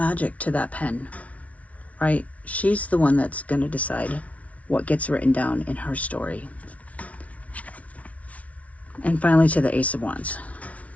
to that pen, right? She's the one that's going to decide what gets written down in her story. And finally to the Ace of Wands.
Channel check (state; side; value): late; right; 0.067 ms